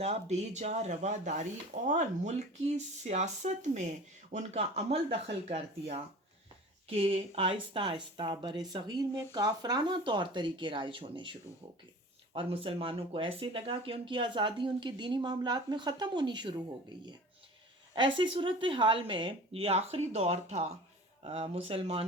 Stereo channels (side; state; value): both; normal; correlation 0.40